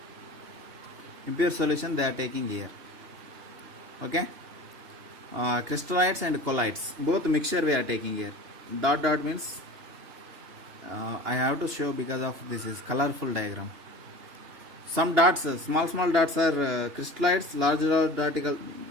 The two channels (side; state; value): left; late; 2.8 ms